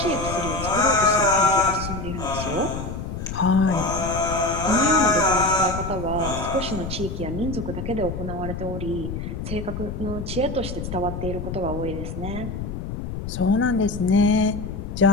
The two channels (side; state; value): left; noise; rumble, 6 dB below the sound